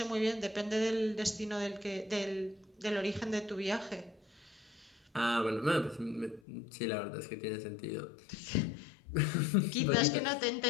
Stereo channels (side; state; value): right; drops out; at 6.4 s